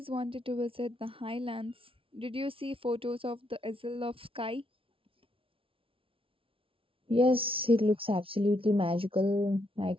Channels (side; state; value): left; late; 0.26 ms